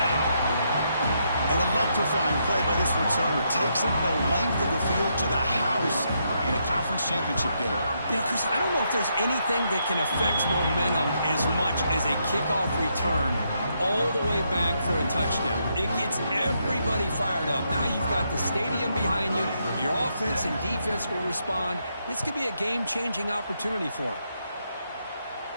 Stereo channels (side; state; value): both; inverted; correlation -0.78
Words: An electrifying play by this returner. Takes it the length of the field to the house in a conference championship game. You know, Chris, I don't know if there's anything that can affect momentum as much as a kickoff return all the way back for a touchdown. It gets everybody fired up. Now you've got the stadium behind you. Your offense and defense will respond. This could be a game-changing opportunity for them.